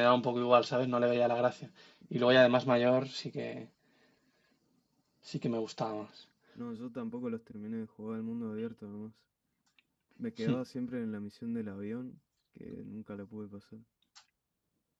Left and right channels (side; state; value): both; identical; correlation 1.00